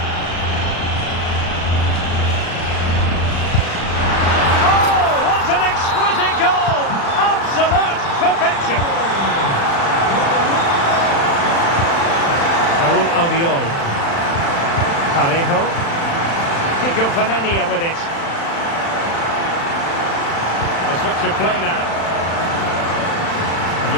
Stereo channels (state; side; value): late; right; 36 ms